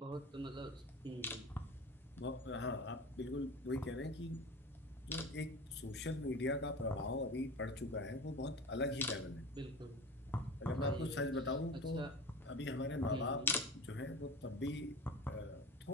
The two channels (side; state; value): both; normal; correlation 0.32